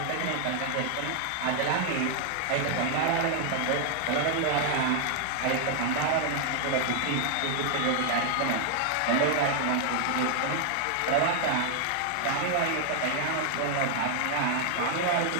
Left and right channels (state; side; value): different; both; correlation 0.00